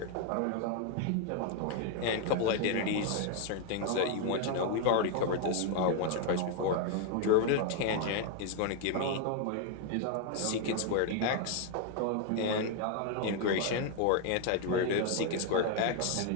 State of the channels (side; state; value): both; different; correlation 0.00